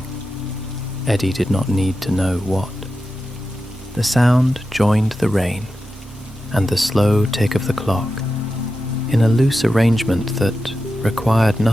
Eddy did not need to know what. The sound joined the rain and the slow tick of the clock in a loose arrangement that required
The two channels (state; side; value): normal; both; correlation 0.91